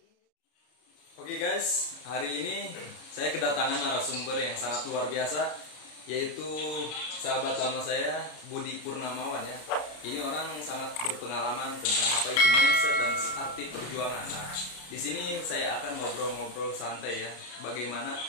Oke guys, hari ini saya kedatangan narasumber yang sangat luar biasa, yaitu sahabat lama saya Budi Purnamawan ya. Ini orang sangat berpengalaman tentang apa itu mindset dan arti perjuangan. Nah, di sini saya akan ngobrol-ngobrol santai ya, bagaimana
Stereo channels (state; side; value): late; right; 33 ms